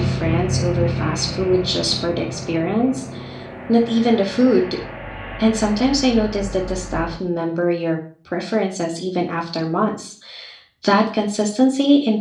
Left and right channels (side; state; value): both; identical; correlation 1.00